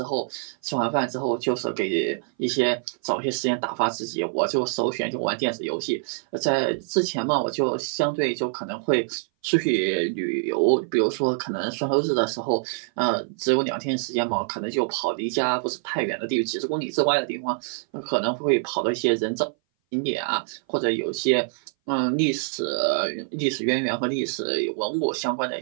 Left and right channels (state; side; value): silent; left; 59 dB below the other